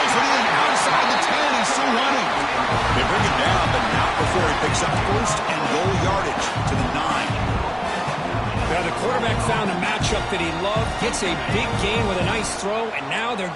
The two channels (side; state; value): both; identical; correlation 1.00